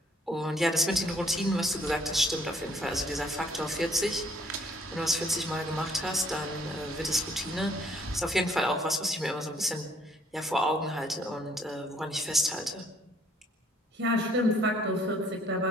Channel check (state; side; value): normal; both; correlation 0.62